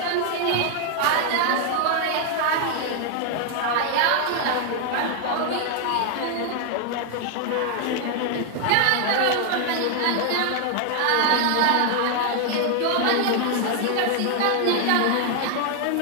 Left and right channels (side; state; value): both; different; correlation 0.00